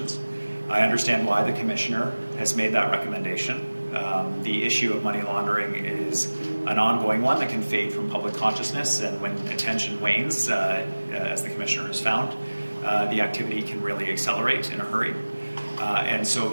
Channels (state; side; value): inverted; both; correlation -1.00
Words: I understand why the Commissioner has made that recommendation. The issue of money laundering is an ongoing one that can fade from public consciousness, and when attention wanes, as the Commissioner has found, the activity can really accelerate in a hurry. And so